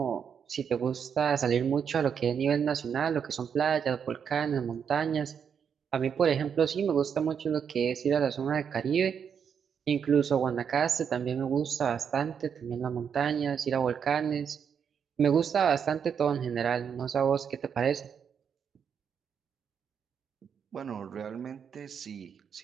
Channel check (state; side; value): quieter; left; 7.3 dB